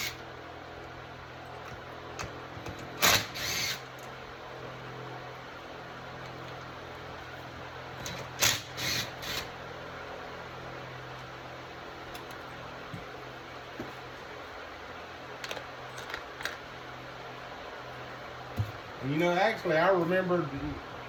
And you know, actually, I remembered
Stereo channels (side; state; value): both; identical; correlation 1.00